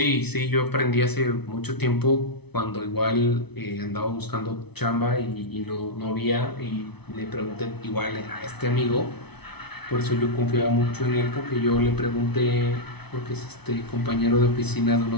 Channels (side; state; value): right; late; 0.99 ms